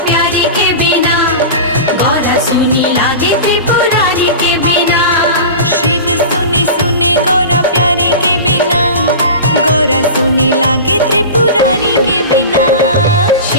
सुनी लागे त्रिपुरारी के बिना।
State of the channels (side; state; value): both; inverted; correlation -0.31